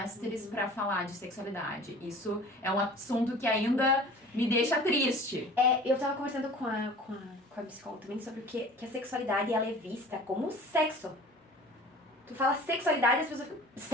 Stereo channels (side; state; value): both; normal; correlation 0.43